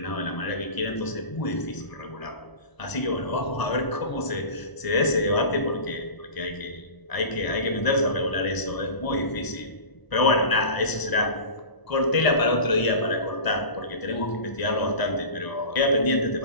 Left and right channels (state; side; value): late; right; 1.0 ms